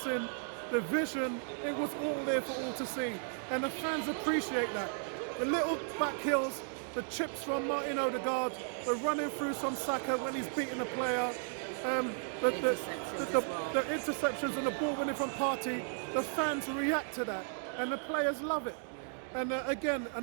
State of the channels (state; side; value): silent; left; 55 dB below the other